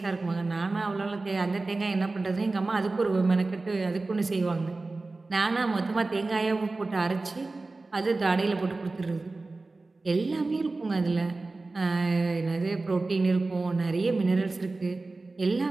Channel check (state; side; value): quieter; left; 3.4 dB